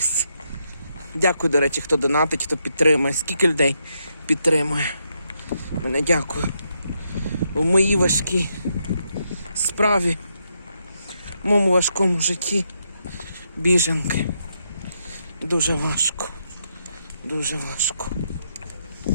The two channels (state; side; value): inverted; both; correlation -0.79